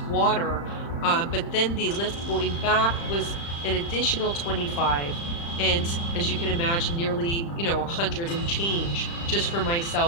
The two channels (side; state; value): right; late; 35 ms